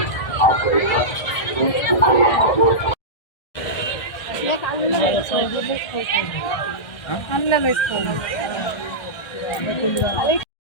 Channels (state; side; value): late; right; 1.6 ms